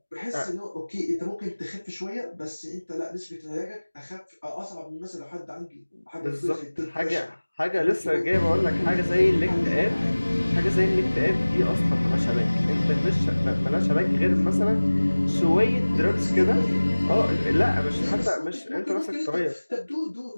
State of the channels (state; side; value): inverted; both; correlation -1.00